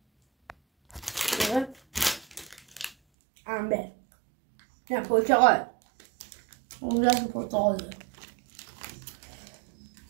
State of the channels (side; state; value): left; drops out; at 3.0 s